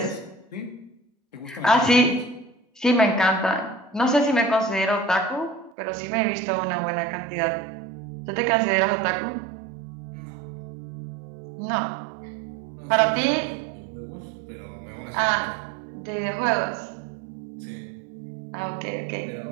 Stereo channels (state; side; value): drops out; left; at 5.8 s